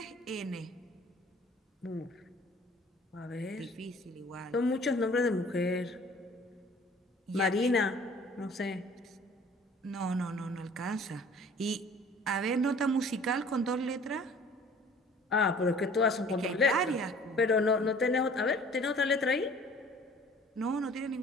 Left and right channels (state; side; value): normal; both; correlation 0.51